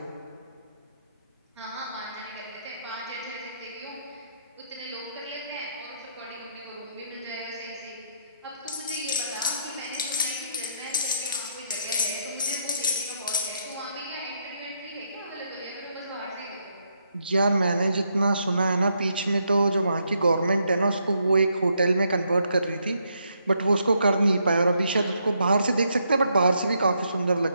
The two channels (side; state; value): both; inverted; correlation -0.76